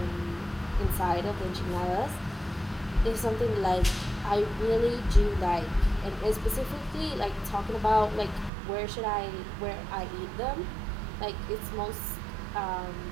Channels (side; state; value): left; drops out; at 8.5 s